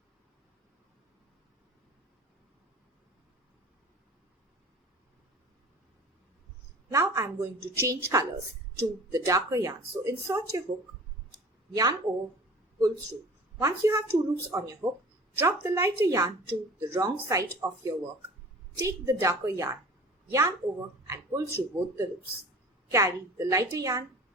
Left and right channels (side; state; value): both; normal; correlation 0.42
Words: Now I am going to change colors to the darker yarn. So insert your hook, yarn over, pull through. Once you have 2 loops on your hook, drop the lighter yarn to the wrong side of your work. Take the darker yarn, yarn over and pull through both the loops. Carry the lighter yarn